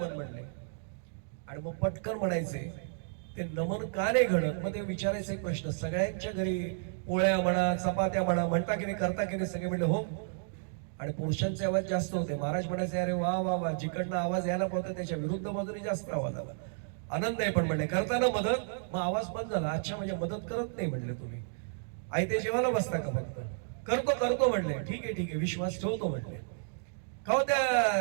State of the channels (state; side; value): silent; left; digital silence